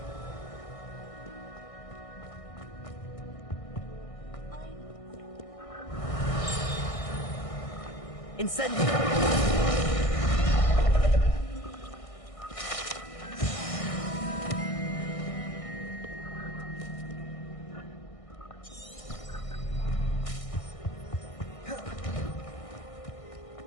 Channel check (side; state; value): right; late; 1.6 ms